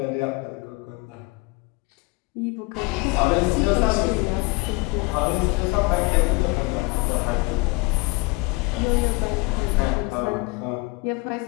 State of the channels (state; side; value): quieter; right; 25.2 dB